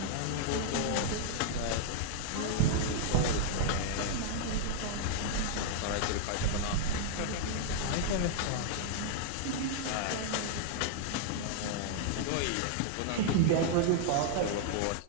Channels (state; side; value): different; both; correlation -0.01